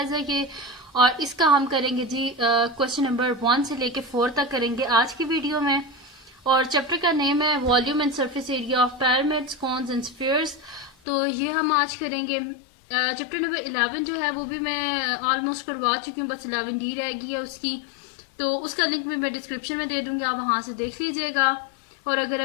है ये। और इसका हम करेंगे जी क्वेश्चन नंबर 1 से लेके 4 तक करेंगे आज की वीडियो में। और चैप्टर का नेम है volume and surface area of pyramids, cones and spheres. तो ये हम आज करेंगे। चैप्टर नंबर 11 जो है वो भी मैं ऑलमोस्ट करवा चुकी हूँ, बस 11D रह गई है उसकी। तो उसका लिंक भी मैं डिस्क्रिप्शन में दे दूंगी, आप वहां से देख लीजिएगा। और अगर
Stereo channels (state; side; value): drops out; right; at 11.0 s